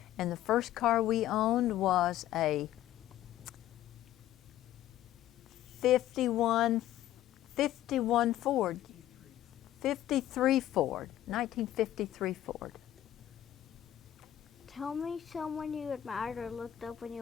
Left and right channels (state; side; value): quieter; right; 12.8 dB